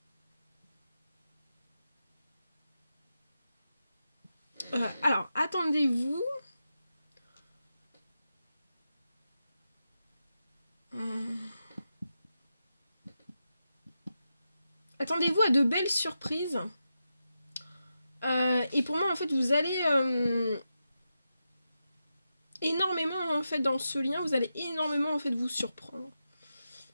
attendez-vous attendez-vous à de belles surprises. Et pour moi, en fait, vous allez énormément en fait dans ce lien, vous allez énormément en fait vous surprendre.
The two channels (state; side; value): inverted; both; correlation -0.88